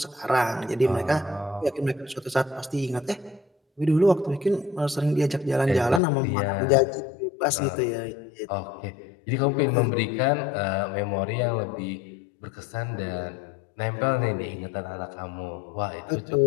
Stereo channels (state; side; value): drops out; right; at 6.0 s